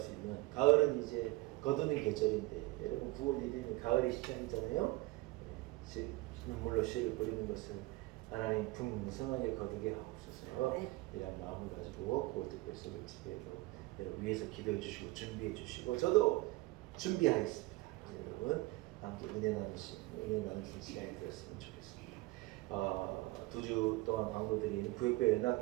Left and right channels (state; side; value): quieter; left; 20.5 dB